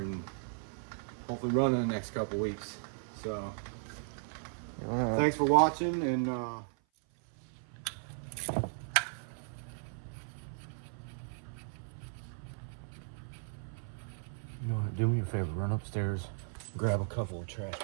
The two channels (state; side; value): silent; left; 54 dB below the other